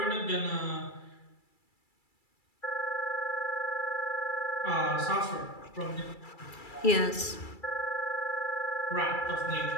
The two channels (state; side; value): late; right; 2.3 ms